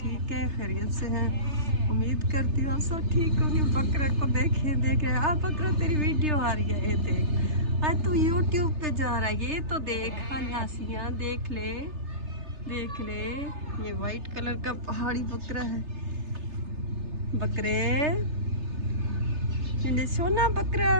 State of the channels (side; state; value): left; late; 3.3 ms